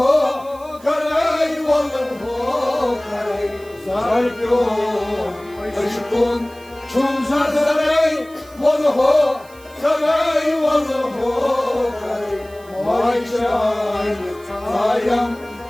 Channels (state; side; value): noise; right; hiss, 25 dB below the sound